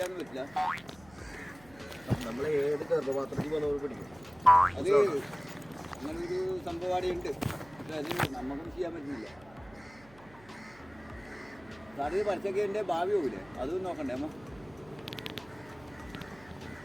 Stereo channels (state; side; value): noise; right; hum, 24 dB below the sound